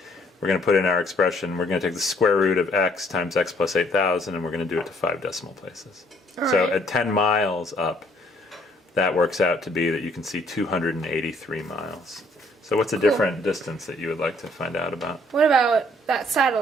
we're going to put in our expression. We're going to take the square root of x times x plus 8,000, and we're going to do it to 5 decimal places. So at 10 miles up, that works out to be that you can see 283 miles. So what's a different distance that you would like to find out about? What about that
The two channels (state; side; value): normal; both; correlation 0.63